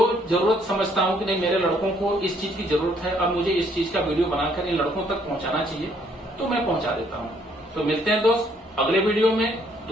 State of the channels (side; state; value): both; normal; correlation 0.66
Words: जरूरत समझता हूं कि नहीं मेरे लड़कों को इस चीज की जरूरत है, अब मुझे इस चीज का वीडियो बनाकर इन लड़कों तक पहुंचाना चाहिए, तो मैं पहुंचा देता हूं। तो मिलते हैं दोस्त अगले वीडियो में